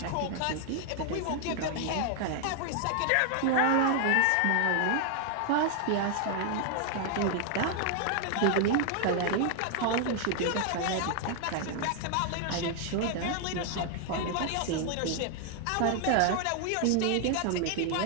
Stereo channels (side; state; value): both; different; correlation 0.00